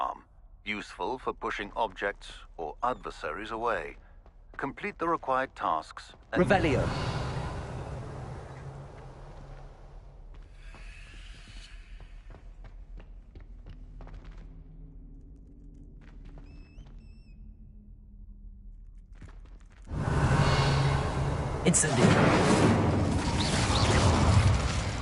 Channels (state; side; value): identical; both; correlation 1.00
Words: useful for pushing objects or adversaries away. Complete the required tasks and... Revelio. Incendio.